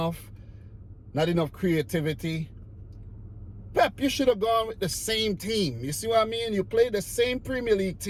Not enough creativity. Pep, you should have gone with the same team. You see what I mean? You played the same Premier League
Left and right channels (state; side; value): identical; both; correlation 1.00